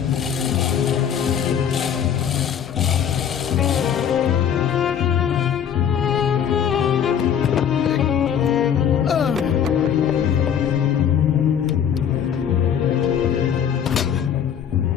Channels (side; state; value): right; quieter; 8.6 dB